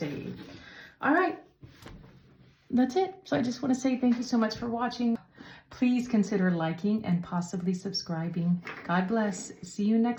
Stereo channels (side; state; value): both; identical; correlation 1.00